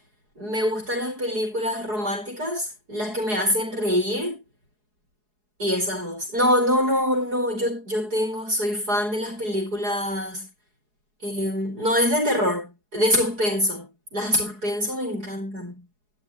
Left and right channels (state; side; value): late; left; 4.7 ms